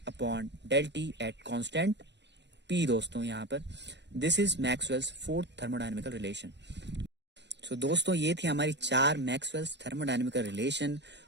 upon del T at constant P. दोस्तों यहाँ पर this is Maxwell's fourth thermodynamical relation. So दोस्तों ये थी हमारी 4 मैक्सवेल्स थर्मोडायनेमिकल रिलेशन।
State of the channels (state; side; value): late; left; 0.51 ms